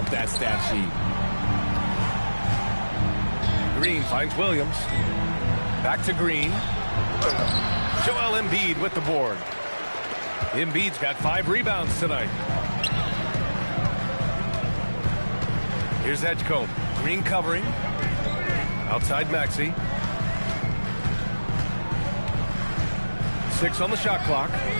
that stat sheet. Green finds Williams. Back to Green. Joel Embiid with the board. Embiid's got 5 rebounds tonight. Here's Edgecombe. Green covering. Outside Maxey. 6 on the shot clock.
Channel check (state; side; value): inverted; both; correlation -1.00